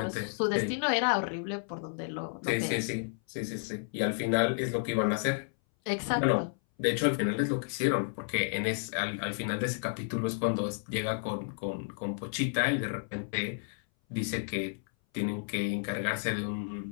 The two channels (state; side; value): silent; right; 57 dB below the other